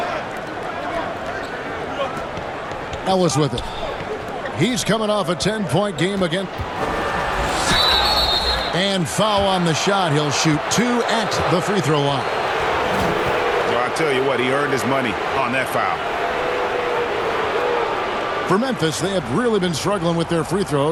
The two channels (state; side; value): identical; both; correlation 1.00